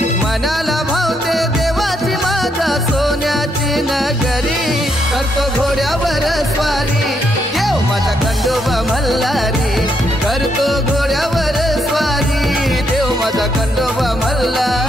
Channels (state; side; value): normal; both; correlation 0.76